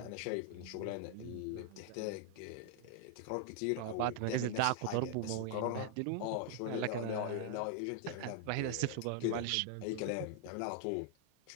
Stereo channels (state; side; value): different; both; correlation 0.00